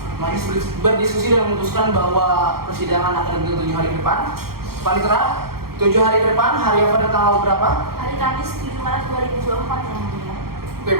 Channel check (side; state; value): left; late; 0.94 ms